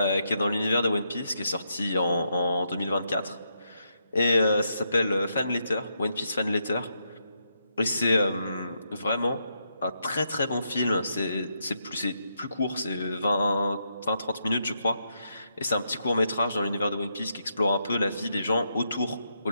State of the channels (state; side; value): inverted; both; correlation -0.80